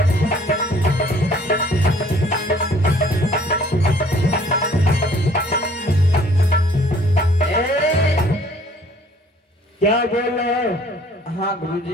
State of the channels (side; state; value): both; normal; correlation 0.57